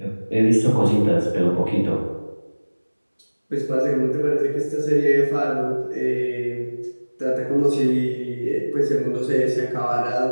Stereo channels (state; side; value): inverted; both; correlation -1.00